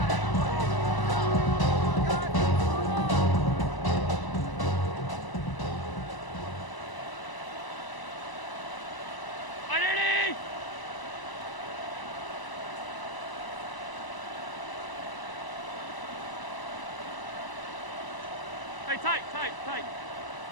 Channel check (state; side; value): late; right; 1.0 ms